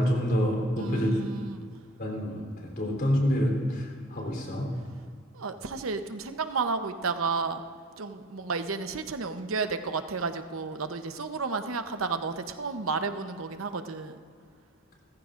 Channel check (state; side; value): normal; both; correlation 0.42